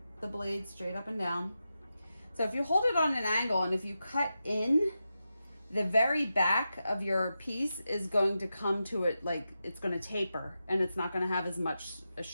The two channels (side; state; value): both; inverted; correlation -0.90